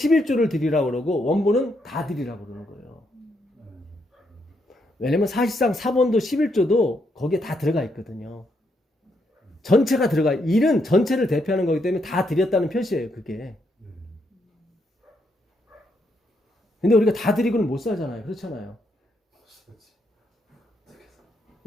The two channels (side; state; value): both; normal; correlation 0.77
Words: 드리라고 그러고 원본은 다 드리라고 그러는 거예요. 왜냐면 사실상 사본도 11조도 거기에 다 들어가 있거든요. 전체가 들어가. 일은 전체를 대표하는 거기 때문에 다 드렸다는 표시예요. 그게. 근데 우리가 다 드리고는 못 살잖아요. 그렇잖아요.